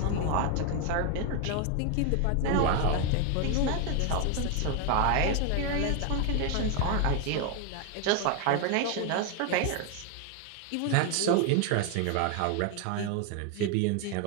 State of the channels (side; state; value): both; different; correlation 0.01